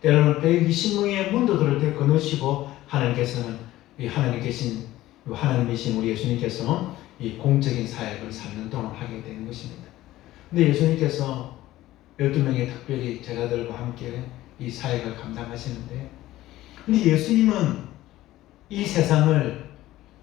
때로는 120명의 문도들을 거느시고 하나님께서는 이 하나님 계신 하나님이신 우리 예수님께서 이 공적인 사역을 3년 동안 하게 되는 것입니다. 근데 예수님께서 12명의 특별히 제자들과 함께 이 사역을 감당하시는데, 근데 예수님은 이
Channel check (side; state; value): right; quieter; 15.7 dB